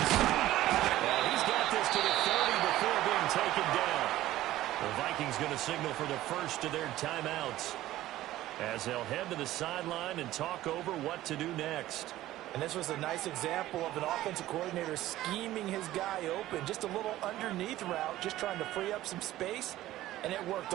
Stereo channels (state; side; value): quieter; left; 15.0 dB